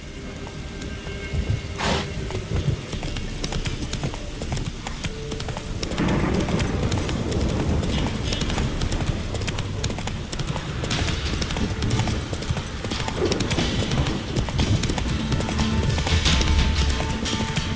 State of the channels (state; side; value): identical; both; correlation 1.00